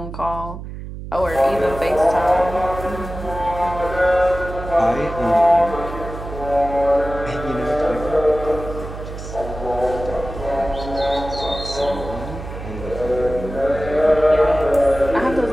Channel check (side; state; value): right; noise; hum, 10 dB below the sound